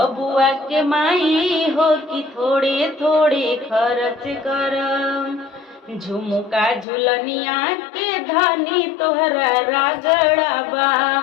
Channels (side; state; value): right; drops out; at 6.9 s